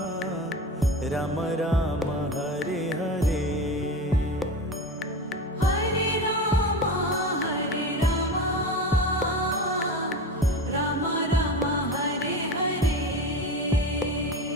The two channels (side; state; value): both; normal; correlation 0.27